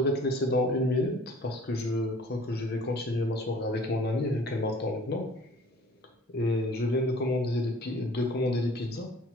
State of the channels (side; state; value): both; normal; correlation 0.51